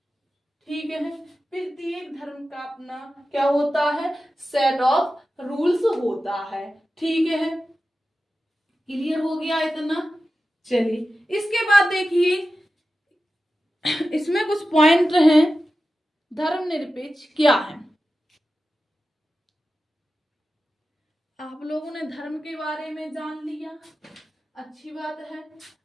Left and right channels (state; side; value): normal; both; correlation 0.93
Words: ठीक है। प्रत्येक धर्म का अपना क्या होता है, सेट ऑफ रूल्स होता है। ठीक है, क्लियर हो गया इतना। चलिए इसके बाद देखिए, इसमें कुछ पॉइंट हैं। धर्मनिरपेक्ष क्या है? आप लोगों ने धर्म के बारे में जान लिया, अच्छी बात है।